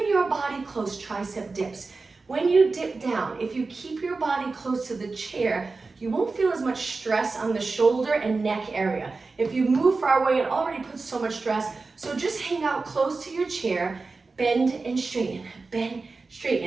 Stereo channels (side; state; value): left; quieter; 3.9 dB